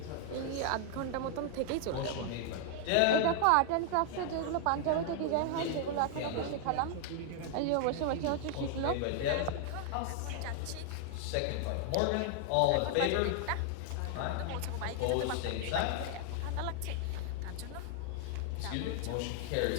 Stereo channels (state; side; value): different; both; correlation 0.00